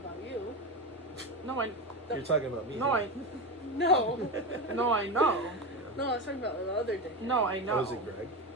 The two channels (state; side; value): normal; both; correlation 0.18